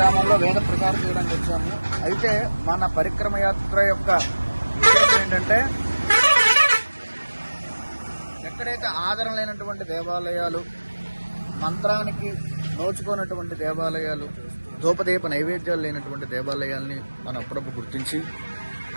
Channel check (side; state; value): both; inverted; correlation -1.00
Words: వేద ప్రచారం చేయడానికి వచ్చాము. అయితే మన పరిక్రమ యాత్ర యొక్క విషయం ఏంటంటే, ఎక్కడైతే ఆదరణ లేనటువంటి దేవాలయాలు, మంత్రానికి నోచుకున్నటువంటి దేవాలయాలు, ధూపదీప నైవేద్యాలు లేనటువంటి దేవాలయాల్ని మనం అప్పుడప్పుడు గుర్తించి